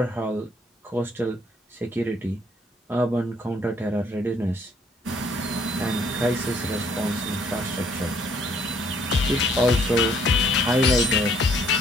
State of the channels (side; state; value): both; normal; correlation 0.64